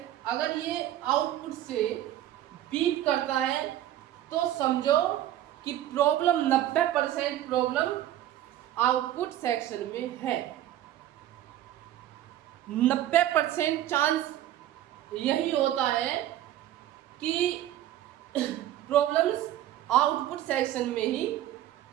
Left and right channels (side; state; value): left; quieter; 12.7 dB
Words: अगर ये आउटपुट से बीप करता है तो समझो कि प्रॉब्लम 90% प्रॉब्लम आउटपुट सेक्शन में है। 90% चांस यही होता है कि प्रॉब्लम्स आउटपुट सेक्शन में ही,